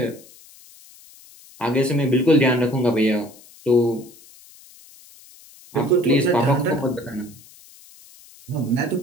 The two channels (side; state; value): left; noise; hiss, 24 dB below the sound